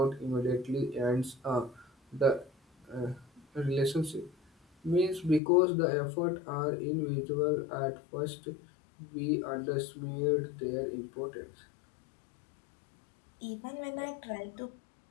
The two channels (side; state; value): right; drops out; at 5.4 s